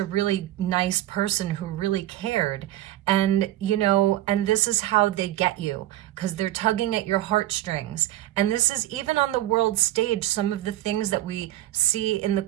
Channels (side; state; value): left; quieter; 14.6 dB